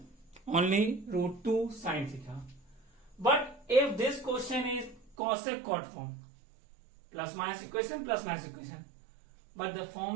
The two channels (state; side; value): drops out; left; at 5.2 s